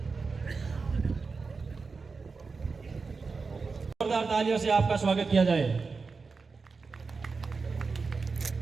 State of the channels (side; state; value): left; quieter; 4.6 dB